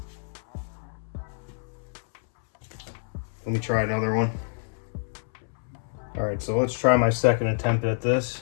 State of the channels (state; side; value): silent; right; 60 dB below the other